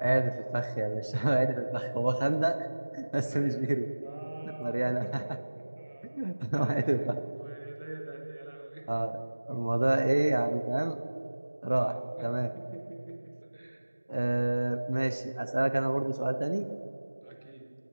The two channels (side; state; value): both; inverted; correlation -1.00